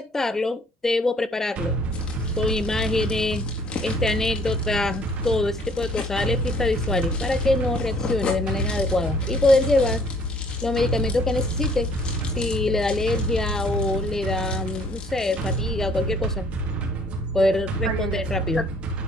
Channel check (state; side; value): normal; both; correlation 0.60